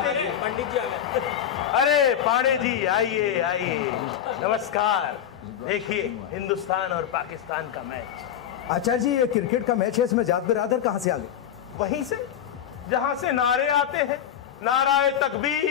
पंडित जी आ गए। अरे पांडे जी आइए आइए, नमस्कार। देखिए हिंदुस्तान और पाकिस्तान का मैच। आचार्य जी, ये क्रिकेट का मैच है, इसमें जात बिरादर कहाँ से आ गए? वहीं से जहां से नारे आते हैं, नाराए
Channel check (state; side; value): quieter; right; 9.8 dB